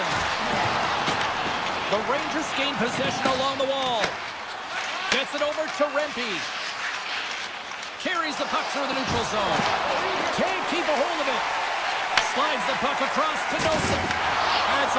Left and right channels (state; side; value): identical; both; correlation 1.00